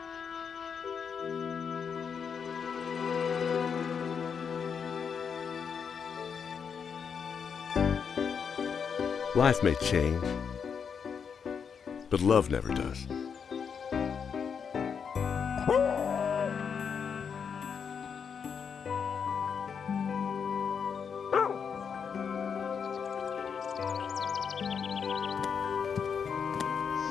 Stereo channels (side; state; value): right; quieter; 6.7 dB